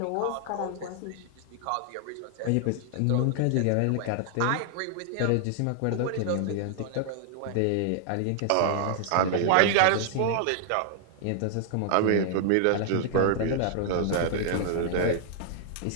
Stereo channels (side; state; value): both; different; correlation 0.00